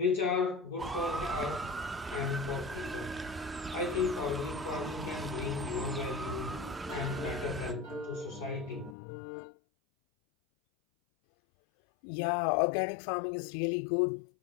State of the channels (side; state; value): right; drops out; at 9.0 s